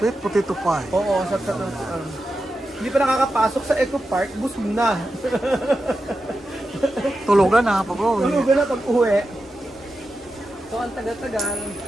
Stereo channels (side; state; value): both; normal; correlation 0.90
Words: potato pie. Oo, sarap-sarap. Hindi pa nakakapasok sa Eco Park, busog na. Tulugan na pag uwi. Tulugan na pag uwi. So, ang tagal-tagal.